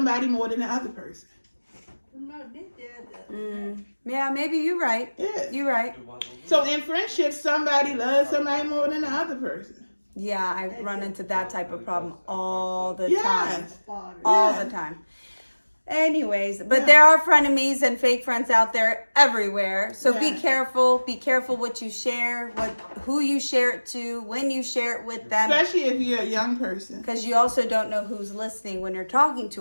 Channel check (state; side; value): inverted; both; correlation -1.00